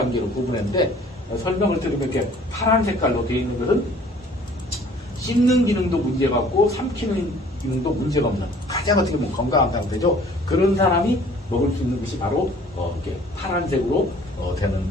구분했는데 설명을 들으면 이렇게 파란 색깔로 되어 있는 것은 씹는 기능도 문제가 없고 삼키는 기능도 문제가 없는 가장 어떻게 보면 건강한 상태죠. 그런 사람이 먹을 수 있는 것이 바로 이렇게 파란색으로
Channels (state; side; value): normal; both; correlation 0.53